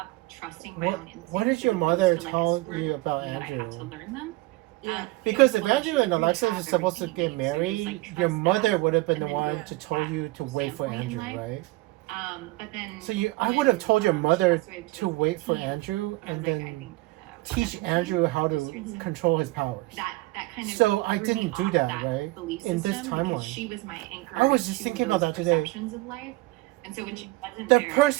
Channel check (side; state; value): left; quieter; 21.6 dB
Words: trusting my What own instincts. What did as your opposed mother to, like, tell screw you about that I have to Andrew? learn them. Yeah. Because if Well, Andrew she and didn't Alexis have were supposed to everything get you need, so just, married, like, your trust mother that, would have been the and then one yeah. to tell you to wait for standpoint in Andrew, life. right? But then So I when, would have told your she mother passed away in to wait for 2015, Andrew I was and like, I then think, teach 17, Andrew how to Mhm. control his powers. that kind of So I threw me didn't do off that, right? belief In this system, timeline. because she was my anchor. I was just to thinking about those that today. perceptions of life. And so when she wasn't The there,